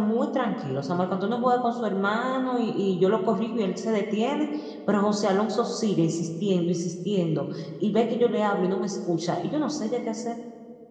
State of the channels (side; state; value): both; identical; correlation 1.00